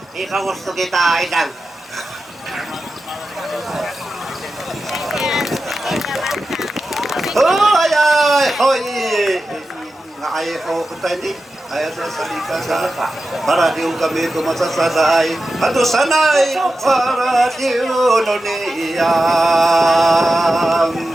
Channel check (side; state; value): both; normal; correlation 0.92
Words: kung gusto kita, Idang. Hoy, ay, hoy! Ngay ko kutani. Ayat sa salika sa para diyo kami tumasasaday. Ato sanay para diyo nuniyam.